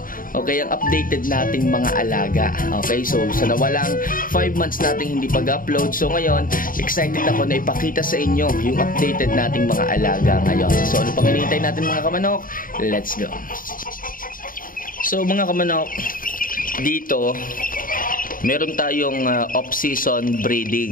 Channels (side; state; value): right; late; 0.40 ms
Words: okay, ang updated nating mga alaga. Okay, so sa nawalang 5 months nating hindi pag-upload, so ngayon excited ako na ipakita sa inyo yung updated nating mga alaga ngayon. So ano pang hinihintay natin mga kamanok? Let's go. So mga kamanok, dito meron tayong off-season